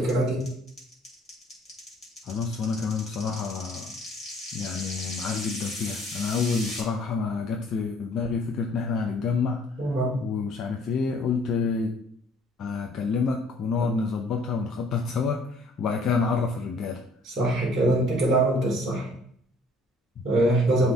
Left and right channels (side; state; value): both; normal; correlation 0.57